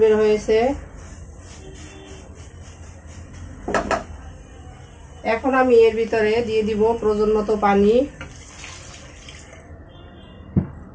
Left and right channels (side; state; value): both; identical; correlation 1.00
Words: হয়েছে। এখন আমি এর ভিতরে দিয়ে দিব প্রয়োজন মতো পানি।